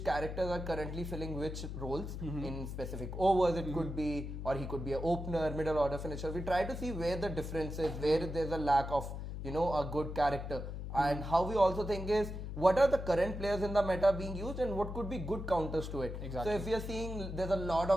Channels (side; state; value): left; noise; hum, 6 dB below the sound